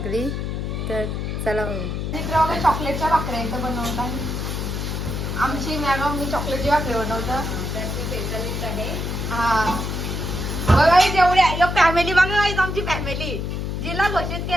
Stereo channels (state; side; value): noise; left; hum, 3 dB below the sound